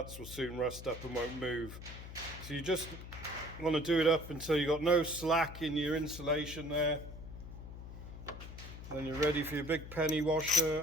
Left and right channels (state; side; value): noise; left; hum, 12 dB below the sound